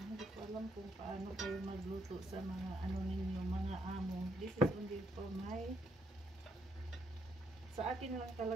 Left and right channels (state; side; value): normal; both; correlation 0.74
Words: ko alam kung paano kayo magluto sa mga ninyo, mga amo. This is only for sa akin lang